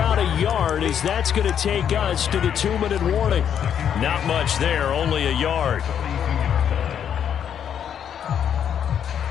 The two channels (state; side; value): quieter; right; 8.7 dB